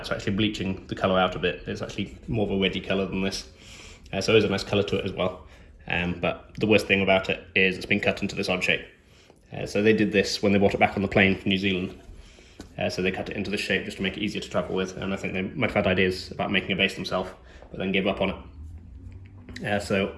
are actually bleaching the colour out a bit. It's actually more of a reddy colour than this, so there's a nice colour to it as well. But the worst thing about it is it's been cut into this odd shape. So they did this when they brought it back on the plane from New Zealand, so they cut it into this shape just to make it easier to travel with, and I think they might have had ideas about making a bass themselves but then gave up on it. So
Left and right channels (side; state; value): both; identical; correlation 1.00